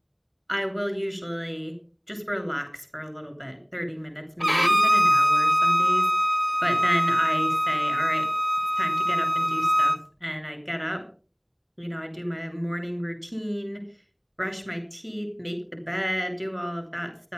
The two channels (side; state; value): both; identical; correlation 1.00